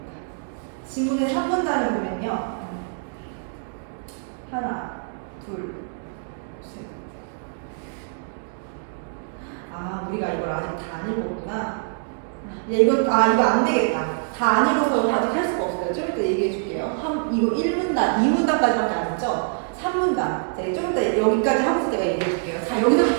지문의 3문단을 보면요. 하나, 둘, 셋. 아, 우리가 이걸 아직 다 안 읽었구나. 이거 안 되겠다. 다 안 읽어서 아직 할 수가 없어요. 좀 이따 얘기해 줄게요. 이거 1문단, 2문단까지밖에 안 했죠? 3문단. 네, 좀 이따 여기까지 하면서 내가 얘기해 줄게요. 자,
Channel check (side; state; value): left; silent; digital silence